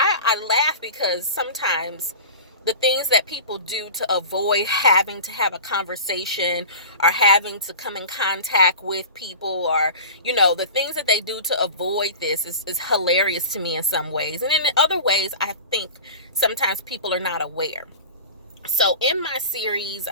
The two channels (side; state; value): both; inverted; correlation -0.35